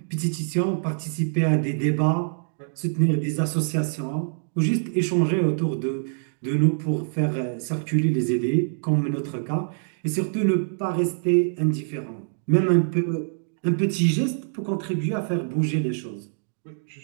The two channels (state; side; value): silent; left; digital silence